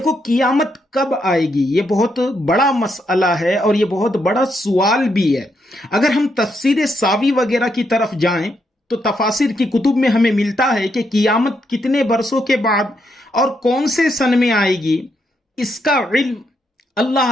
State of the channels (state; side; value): normal; both; correlation 0.78